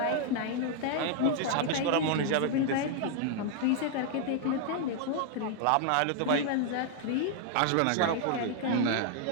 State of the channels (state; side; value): different; both; correlation 0.00